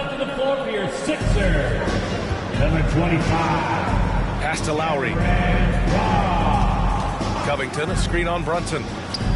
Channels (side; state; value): both; identical; correlation 1.00